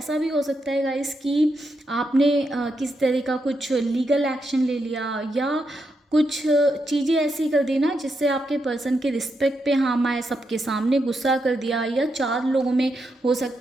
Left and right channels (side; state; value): both; normal; correlation 0.83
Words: भी हो सकता है गाइस कि आपने किस तरह का कुछ लीगल एक्शन ले लिया या कुछ चीज़ें ऐसी कर दी ना जिससे आपके पर्सन के रिस्पेक्ट पे हार्म आए, सबके सामने गुस्सा कर दिया, या चार लोगों में हो